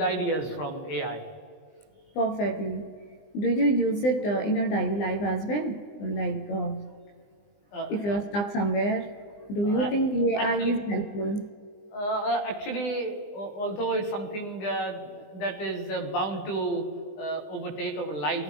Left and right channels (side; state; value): right; late; 20 ms